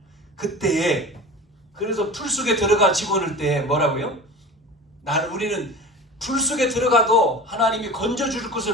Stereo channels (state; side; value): normal; both; correlation 0.35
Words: 그때 그래서 풀 속에 들어가 집어넣을 때 뭐라고요? 우리는 풀 속에 들어가도 하나님이 건져줄